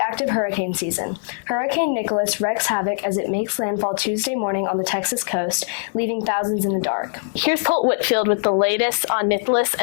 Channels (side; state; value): right; silent; 65 dB below the other